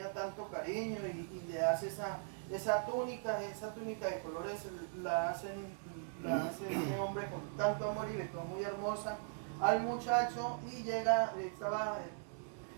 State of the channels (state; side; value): silent; left; digital silence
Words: tanto cariño y le hace esa túnica de colores, la hace este hombre con tanto amor y le quedó muy hermosa al muchacho, y estaba